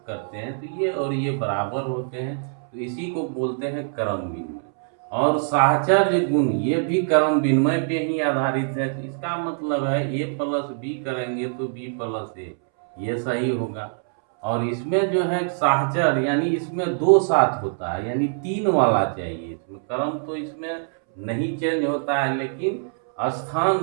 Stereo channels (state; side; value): silent; left; 63 dB below the other